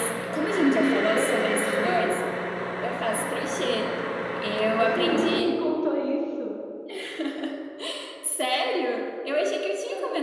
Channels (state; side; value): identical; both; correlation 1.00